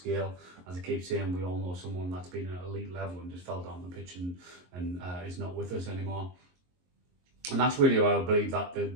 As I keep saying, we all know someone that's been at elite level and just fell down the pitch and is not with us anymore. And that's really why I believe that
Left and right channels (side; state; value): left; late; 22 ms